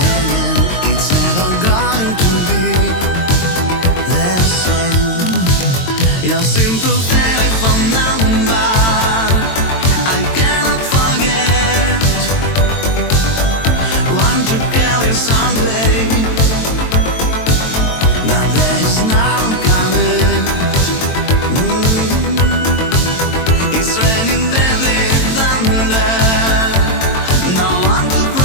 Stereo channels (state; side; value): late; right; 22 ms